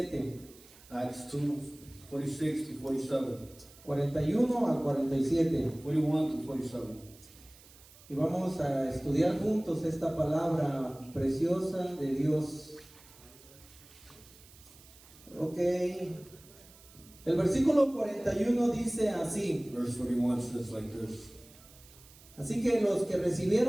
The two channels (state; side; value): noise; right; hiss, 23 dB below the sound